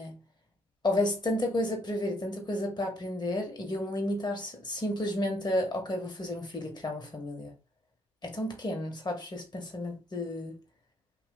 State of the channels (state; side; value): normal; both; correlation 0.70